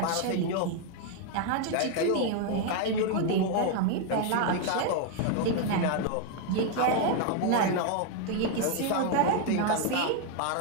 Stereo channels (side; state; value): both; different; correlation 0.00